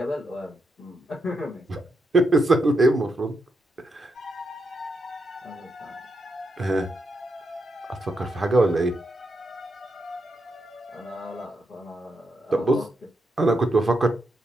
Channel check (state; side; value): normal; both; correlation 0.82